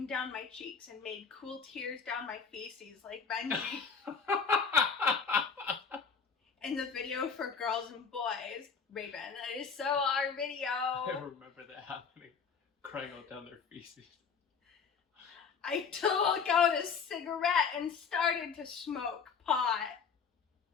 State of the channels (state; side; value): quieter; right; 5.9 dB